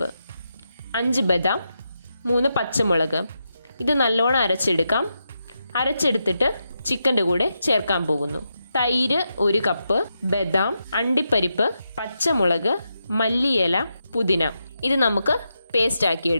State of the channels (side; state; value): both; inverted; correlation -0.86